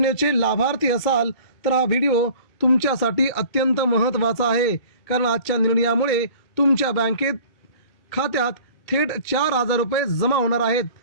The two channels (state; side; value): late; right; 2.2 ms